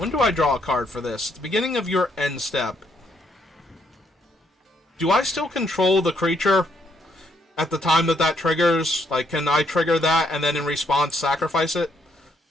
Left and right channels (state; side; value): normal; both; correlation 0.73